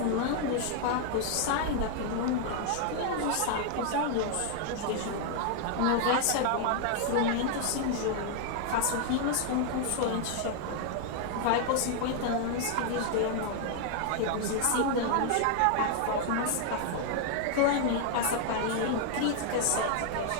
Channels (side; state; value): both; different; correlation 0.00